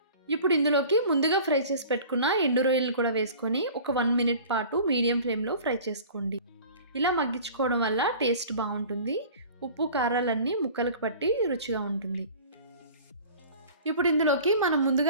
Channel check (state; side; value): inverted; both; correlation -0.43